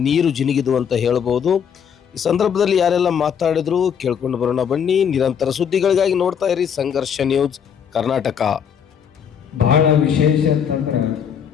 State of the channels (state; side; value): quieter; right; 7.7 dB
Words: ನೀರು ಜಿನುಗಿದು ಅಂತ ಹೇಳ್ಬೋದು. ಈ ಸಂದರ್ಭದಲ್ಲಿ ಯಾರೆಲ್ಲ ಮಾತಾಡಿದ್ರು ಕೇಳ್ಕೊಂಡು ಬರೋಣ ಬನ್ನಿ. ನಿರಂತರ ಸುದ್ದಿಗಳಿಗಾಗಿ ನೋಡ್ತಾ ಇರಿ ಸಂಘರ್ಷ ನ್ಯೂಸ್ ಕರ್ನಾಟಕ. ಬಹಳ ವಿಶೇಷ ಅಂತಂದ್ರೆ,